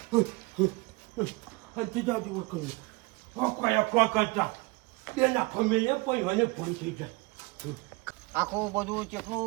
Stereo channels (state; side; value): quieter; left; 25.1 dB